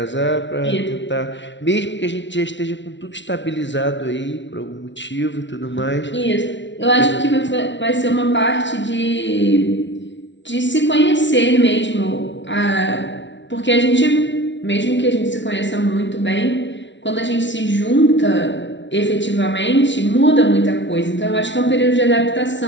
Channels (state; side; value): late; right; 0.53 ms